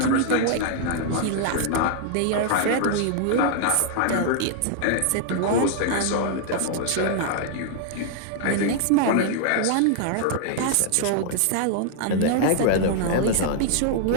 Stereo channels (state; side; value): different; both; correlation -0.01